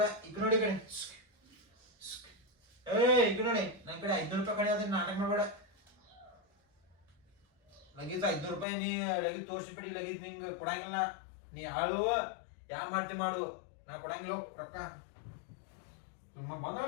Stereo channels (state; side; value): drops out; right; at 8.7 s